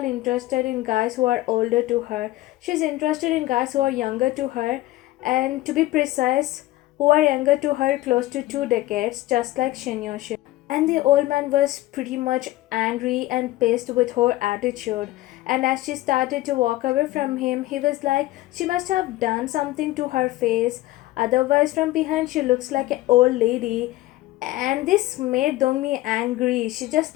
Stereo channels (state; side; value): quieter; right; 17.1 dB